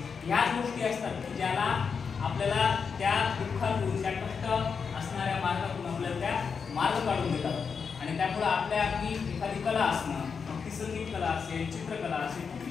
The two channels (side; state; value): right; quieter; 5.9 dB